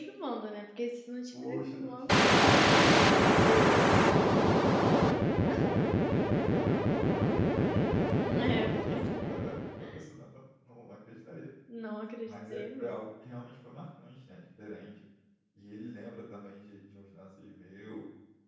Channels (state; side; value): identical; both; correlation 1.00